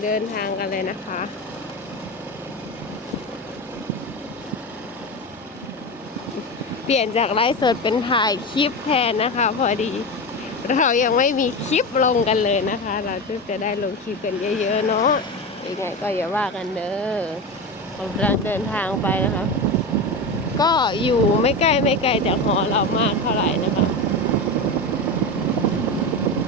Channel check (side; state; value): both; normal; correlation 0.21